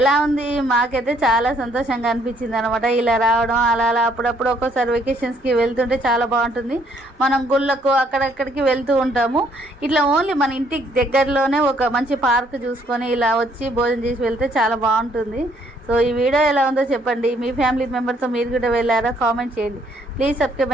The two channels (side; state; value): both; normal; correlation 0.67